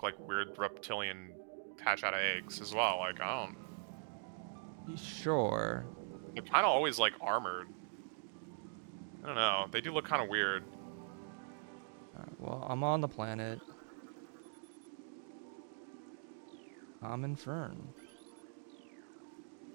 like weird reptilian hatch out of eggs as well. Like, I don't. Sure. They're kind of always like armored. I don't know. They do look kind of weird. Alright, well, I'm on the planet. I'm in Fern.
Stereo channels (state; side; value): silent; left; digital silence